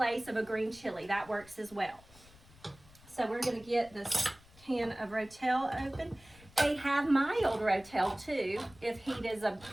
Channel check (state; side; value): noise; left; rumble, 24 dB below the sound